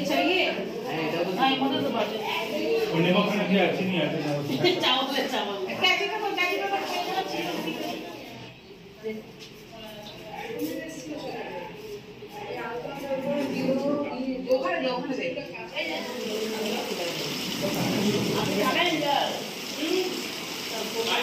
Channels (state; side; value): identical; both; correlation 1.00